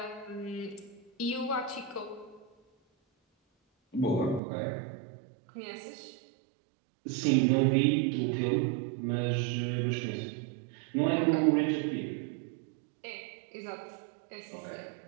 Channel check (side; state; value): left; drops out; at 4.4 s